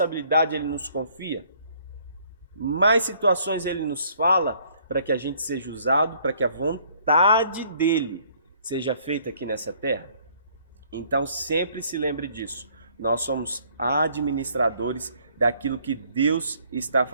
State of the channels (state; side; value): inverted; both; correlation -0.62